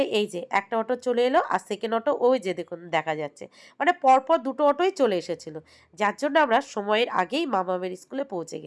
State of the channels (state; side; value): identical; both; correlation 1.00